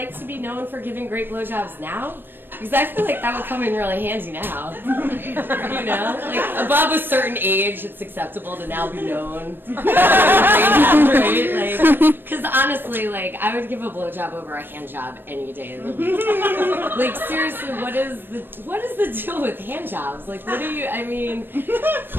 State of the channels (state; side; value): late; left; 0.10 ms